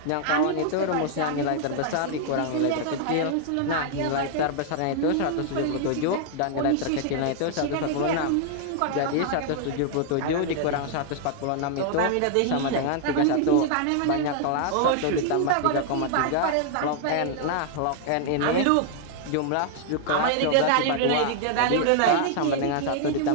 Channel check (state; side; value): different; both; correlation -0.01